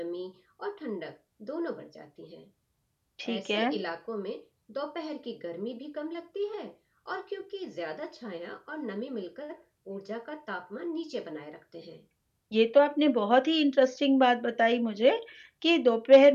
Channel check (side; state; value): both; identical; correlation 1.00